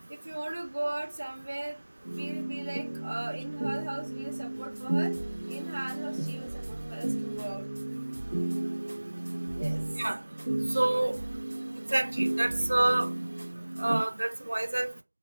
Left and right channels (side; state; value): both; inverted; correlation -1.00